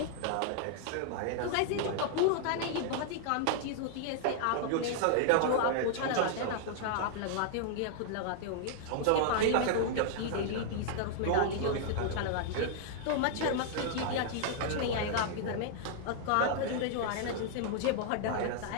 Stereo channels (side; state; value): both; different; correlation -0.01